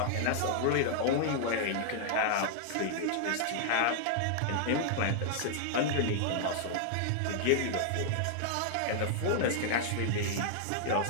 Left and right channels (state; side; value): different; both; correlation -0.01